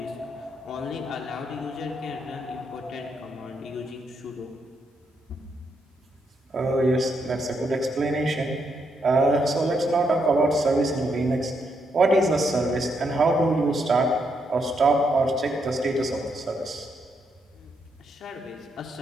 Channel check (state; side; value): normal; both; correlation 0.78